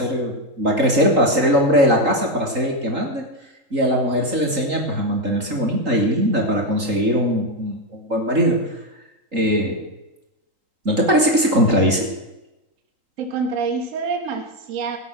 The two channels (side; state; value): left; late; 3.8 ms